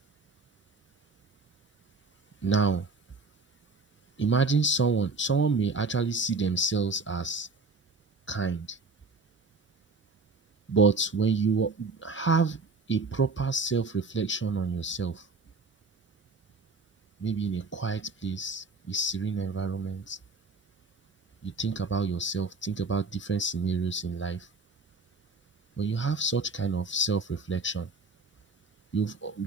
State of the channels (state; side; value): quieter; left; 3.7 dB